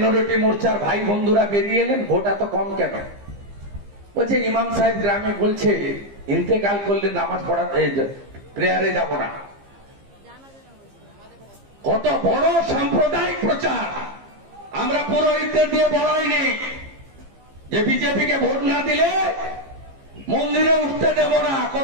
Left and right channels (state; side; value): late; left; 15 ms